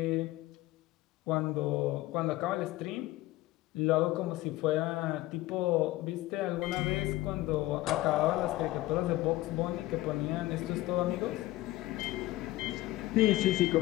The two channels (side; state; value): right; quieter; 17.3 dB